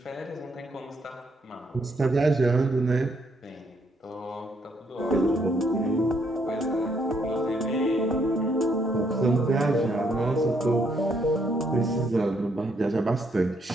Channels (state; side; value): normal; both; correlation 0.72